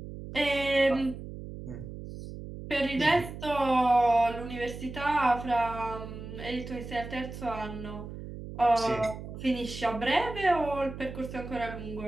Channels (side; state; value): right; noise; hum, 11 dB below the sound